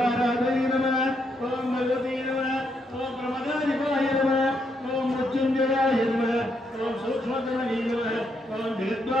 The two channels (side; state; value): both; normal; correlation 0.77